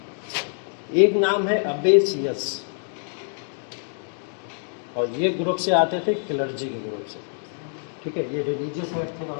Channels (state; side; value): silent; right; digital silence